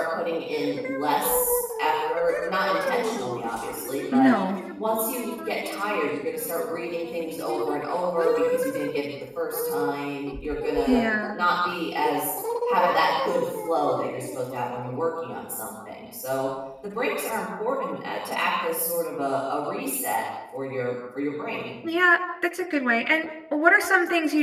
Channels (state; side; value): identical; both; correlation 1.00